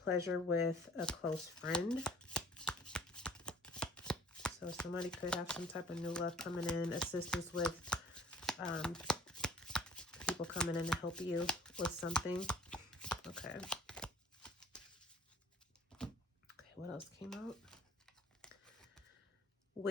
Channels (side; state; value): both; normal; correlation 0.51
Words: with a close friend. So somebody could have some type of new love coming in, assistance with people coming in to help you with something. Okay. Okay, what else came out?